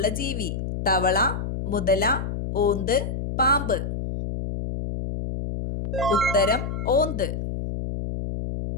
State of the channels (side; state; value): left; noise; hum, 4 dB below the sound